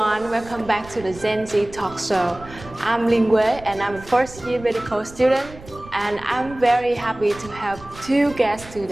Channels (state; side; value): noise; right; rumble, 18 dB below the sound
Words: welcome back to the Gen Z talk show. I'm Linh Quế and I'm a first year medical student, and I'm very happy to have two guests